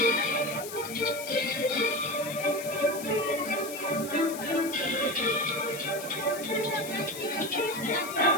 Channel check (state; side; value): noise; left; hiss, 11 dB below the sound